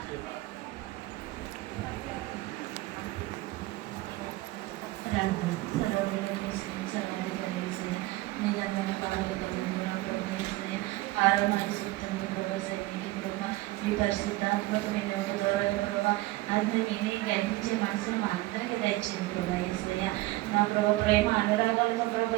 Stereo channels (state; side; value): quieter; left; 19.1 dB